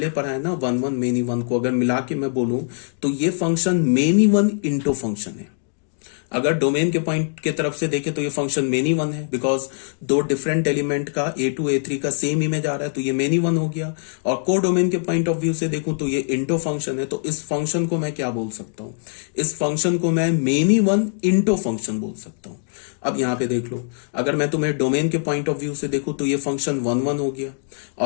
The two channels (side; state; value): right; silent; digital silence